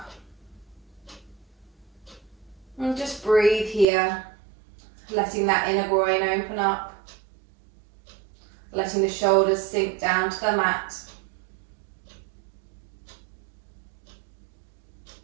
And just breathe here, letting that inner groin open up, letting the shoulders sink down to the mat.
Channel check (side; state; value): left; drops out; at 3.9 s